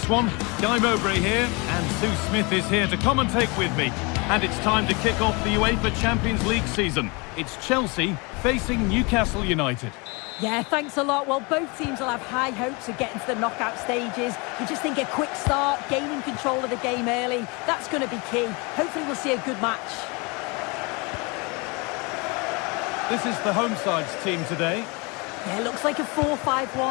one. Guy Mowbray here, and Sue Smith is here to commentate with me. And it's time to kick off the UEFA Champions League season. It's Chelsea facing Newcastle United. Yeah, thanks a lot. Well, both teams will have high hopes of getting to the knockout stages. You just think a quick start, gaining control of the game early, that's going to be key. Hopefully we'll see a good match. This is the home side's team today. Yeah, it looks like a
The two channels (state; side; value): quieter; right; 28.8 dB